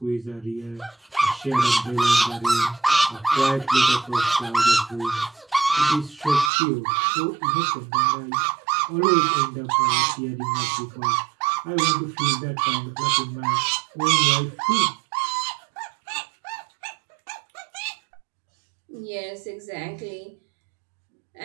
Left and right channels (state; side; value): drops out; left; at 6.5 s